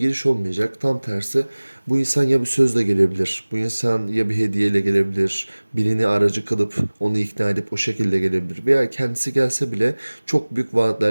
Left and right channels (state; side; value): inverted; both; correlation -1.00